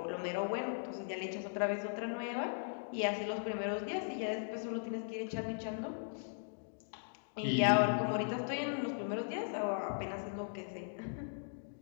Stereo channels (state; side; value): silent; right; digital silence